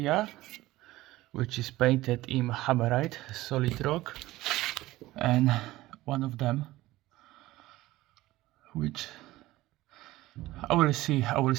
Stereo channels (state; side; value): quieter; left; 17.4 dB